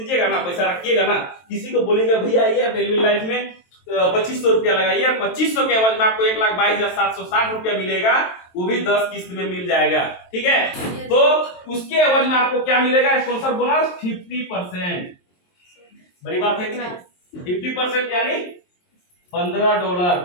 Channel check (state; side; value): late; right; 23 ms